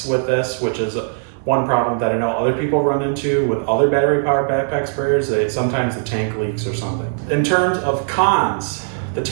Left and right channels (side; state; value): left; silent; digital silence